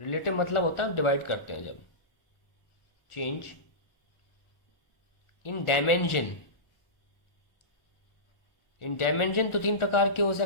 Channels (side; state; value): right; late; 1.4 ms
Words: मतलब होता है हम डिवाइड करते हैं जब, change in dimension. In dimension तो तीन प्रकार के हो